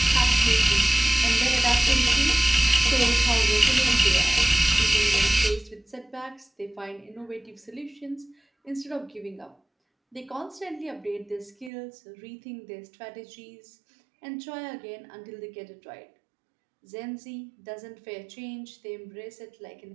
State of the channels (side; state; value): left; drops out; at 11.7 s